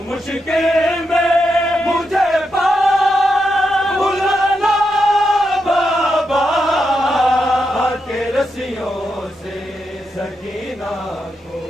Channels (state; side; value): normal; both; correlation 0.84